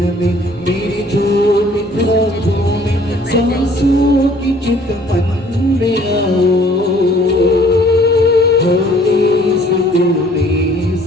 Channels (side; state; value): both; normal; correlation 0.57